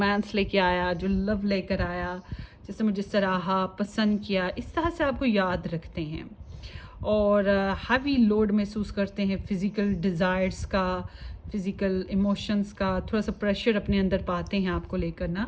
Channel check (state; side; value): identical; both; correlation 1.00